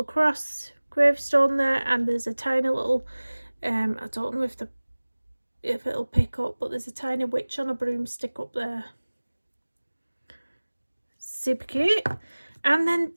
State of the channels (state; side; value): inverted; both; correlation -1.00